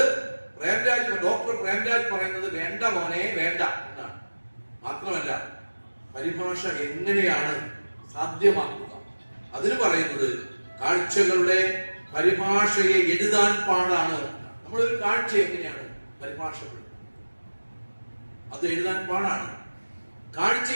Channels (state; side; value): inverted; both; correlation -1.00